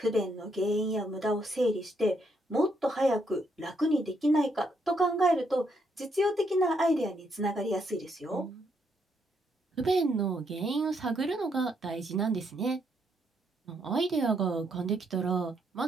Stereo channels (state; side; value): normal; both; correlation 0.75